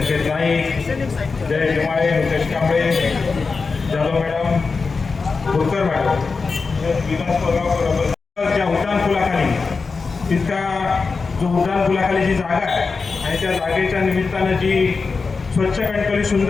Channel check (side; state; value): right; quieter; 4.5 dB